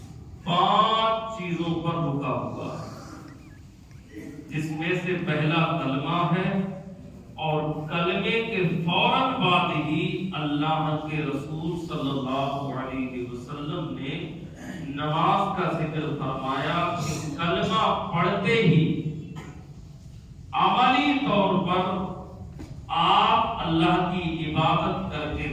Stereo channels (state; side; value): identical; both; correlation 1.00